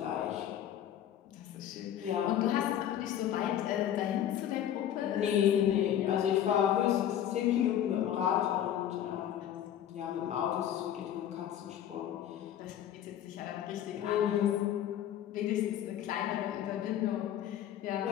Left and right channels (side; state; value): right; quieter; 10.7 dB